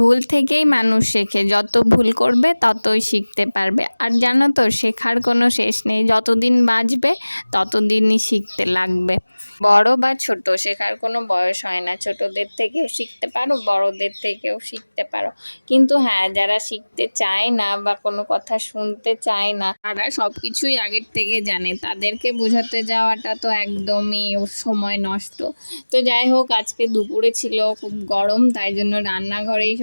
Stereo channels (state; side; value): inverted; both; correlation -1.00